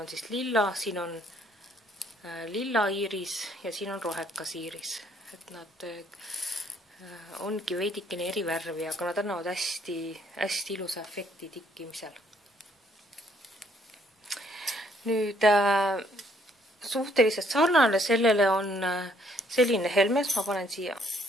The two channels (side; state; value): both; normal; correlation 0.66